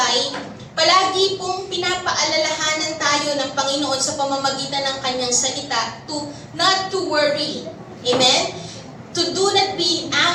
palagi pong pinapaalalahanan tayo ng Panginoon sa pamamagitan ng Kanyang salita to not to worry. Amen? To do not be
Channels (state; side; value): identical; both; correlation 1.00